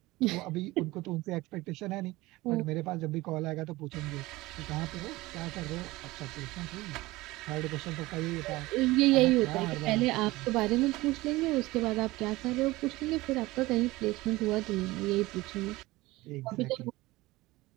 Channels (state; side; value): quieter; left; 19.8 dB